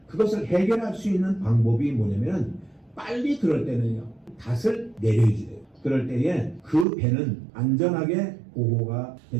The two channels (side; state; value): left; drops out; at 6.9 s